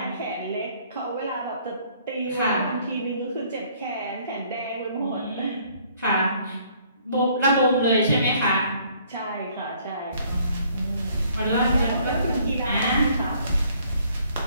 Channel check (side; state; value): both; inverted; correlation -0.62